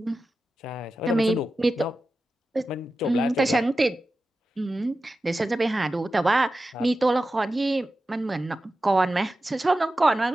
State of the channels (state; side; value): normal; both; correlation 0.93